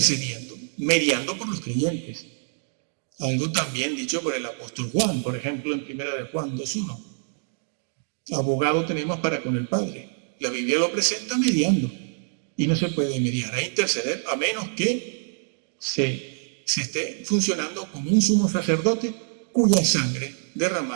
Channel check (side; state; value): left; silent; digital silence